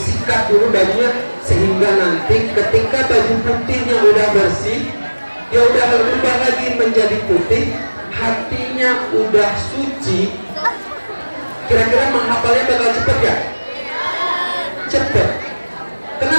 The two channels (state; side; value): inverted; both; correlation -1.00